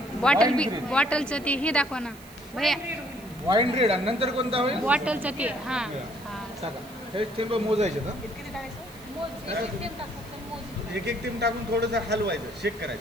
Bottle Wine green. बॉटलचं ते हे दाखवा ना भैया. Wine red. आणि नंतर कोणता होईल? बॉटलचं ते हां टाका. हे थेंब मोजायचे ना. किती टाकायचं? एक एक थेंब टाकून थोडंसं हलवायचं, शेक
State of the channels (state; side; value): noise; right; hiss, 22 dB below the sound